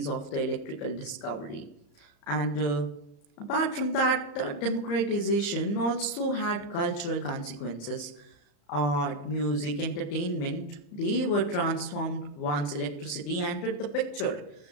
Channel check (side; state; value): right; late; 35 ms